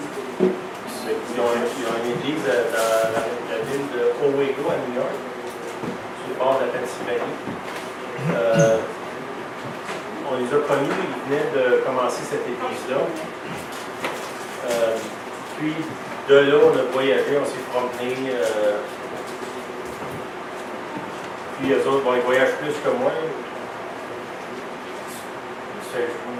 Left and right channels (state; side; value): identical; both; correlation 1.00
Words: Ils ont une église dans la ville de Owego à New York, sur le bord de la Pennsylvanie. On les a connus, ils venaient de commencer cette église-là. Puis de là, on a voyagé, on s'est promené. Puis eux autres, ils voyagent plus que moi. Je